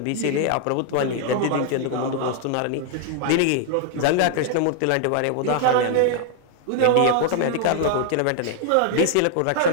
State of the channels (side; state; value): both; different; correlation 0.00